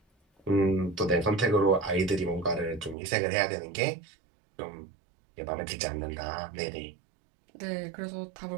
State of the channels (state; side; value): drops out; left; at 3.0 s